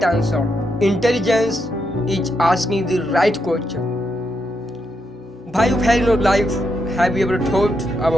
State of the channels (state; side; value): normal; both; correlation 0.82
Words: answer, intelligence is asking the right question. Why you fail in your life? Have you ever thought